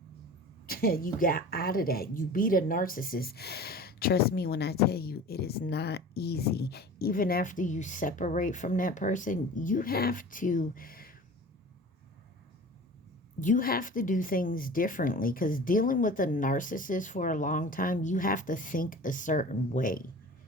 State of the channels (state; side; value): normal; both; correlation 0.39